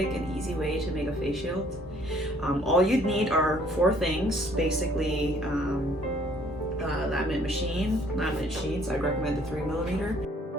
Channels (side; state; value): both; normal; correlation 0.60